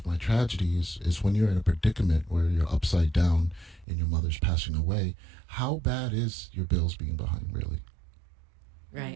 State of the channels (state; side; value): drops out; left; at 3.9 s